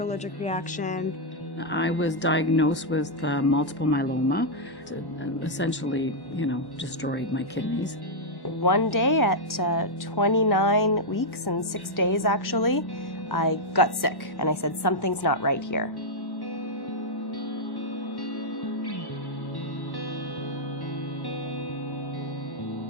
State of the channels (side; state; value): right; late; 1.1 ms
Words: allergic reaction. I was diagnosed with multiple myeloma. It essentially, destroyed my kidneys. One day at 29 weeks and 6 days actually, I got sick and I said, something's not right here.